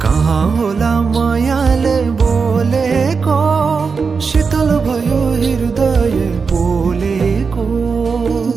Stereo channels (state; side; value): quieter; left; 5.2 dB